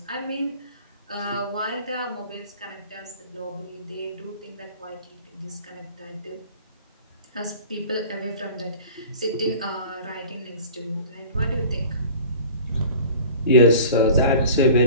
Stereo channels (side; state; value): both; inverted; correlation -0.42